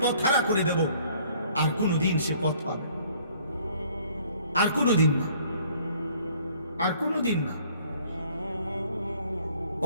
পথ হারা করে দেব আর কোনোদিন সে পথ পাবে, আর কোনোদিন না, আর কোনোদিন না।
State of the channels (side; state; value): both; inverted; correlation -0.58